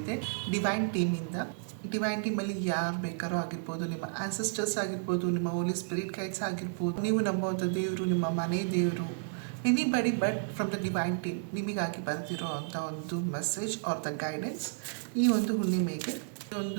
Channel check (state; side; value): silent; left; 57 dB below the other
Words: ಡಿವೈನ್ ಟೀಮಿಂದ. ಡಿವೈನ್ ಟೀಮಲ್ಲಿ ಯಾರು ಬೇಕಾರೋ ಆಗಿರ್ಬೋದು, ನಿಮ್ಮ ಆನ್ಸೆಸ್ಟರ್ಸ್ ಆಗಿರ್ಬೋದು, ನಿಮ್ಮ ಹೋಲಿ ಸ್ಪಿರಿಟ್ ಗೈಡ್ಸ್ ಆಗಿರ್ಬೋದು, ನೀವು ನಂಬುವಂಥ ದೇವರು, ನಿಮ್ಮ ಮನೆ ದೇವರು, anybody but from the divine team ನಿಮಗಾಗಿ ಬರ್ತಿರೋ ಅಂಥ ಒಂದು ಮೆಸೇಜ್ ಆರ್ ದ ಗೈಡೆನ್ಸ್ ಈ ಒಂದು ಹುಣ್ಣಿಮೆಗೆ